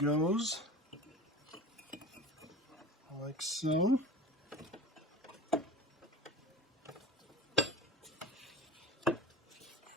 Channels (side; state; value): both; normal; correlation 0.35